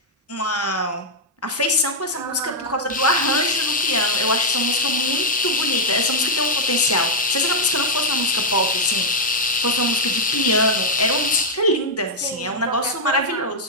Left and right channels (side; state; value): both; normal; correlation -0.03